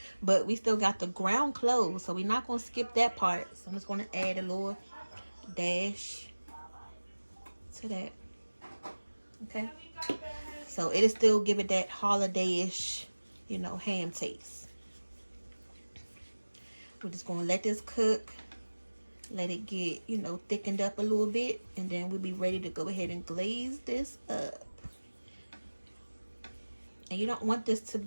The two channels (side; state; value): both; inverted; correlation -1.00